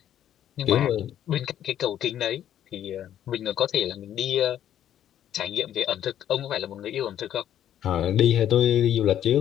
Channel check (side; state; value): right; quieter; 10.9 dB